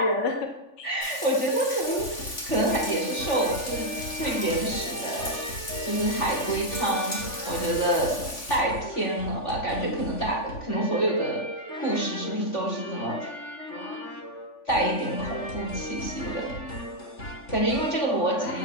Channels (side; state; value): right; late; 3.5 ms